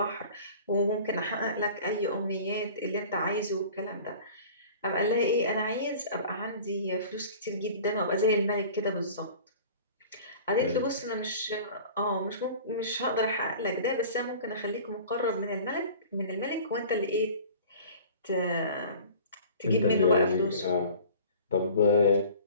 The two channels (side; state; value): both; inverted; correlation -0.43